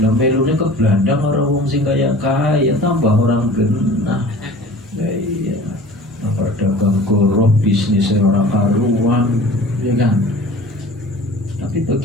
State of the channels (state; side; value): normal; both; correlation 0.43